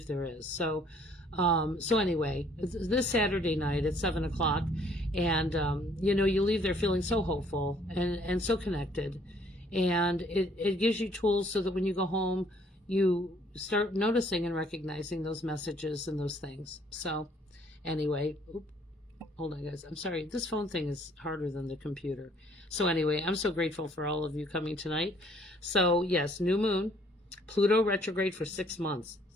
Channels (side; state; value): both; normal; correlation 0.62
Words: there is. So anyway, this Saturday night at 7 o'clock, and, you leave there feeling so hopeful and so connected. And it gives you tools so that when you go home, you start noticing and recognizing those messages and those things. So anyway, hold on, guys. I'm sorry. This phone thing is harder than the computer. So anyway, I'm so grateful for all of you coming tonight. So yes, new moon, Pluto retrograde for 6 months.